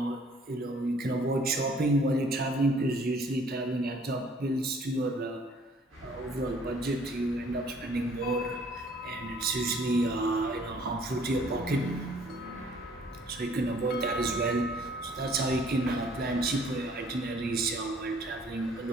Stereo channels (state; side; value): normal; both; correlation 0.57